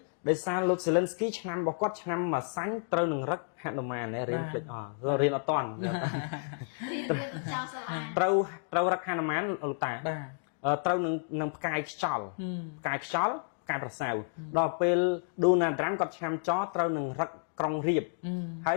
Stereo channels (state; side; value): silent; right; digital silence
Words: ដោយសារលោក Zelensky ឆ្នាំរបស់គាត់ឆ្នាំមួយសាញ់ត្រូវនឹងរឹកហនុមានរៀនភ្លេចរៀនអត់តាន់ត្រូវរឹកហនុមានលោកតាត្រូវនឹងផ្កាយខ្យល់ផ្កាយខ្យល់ផ្កាយប្រសើរដល់ពេល Donald Trump គាត់ឆ្នាំចត្រូវនឹងរឹកក្រុងរៀបហើ